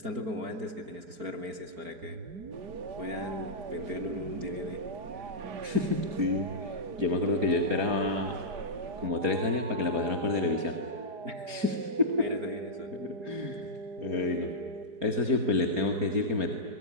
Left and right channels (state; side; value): late; left; 4.3 ms